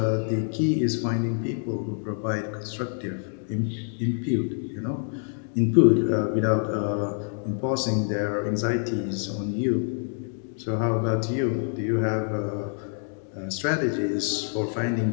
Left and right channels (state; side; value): silent; right; 59 dB below the other